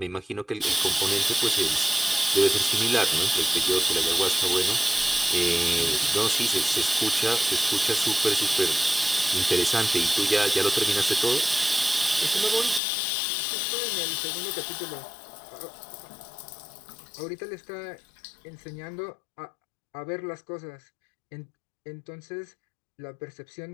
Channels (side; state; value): right; drops out; at 12.8 s